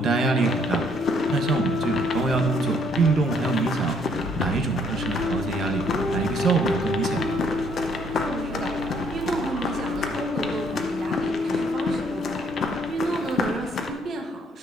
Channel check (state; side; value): normal; both; correlation 0.66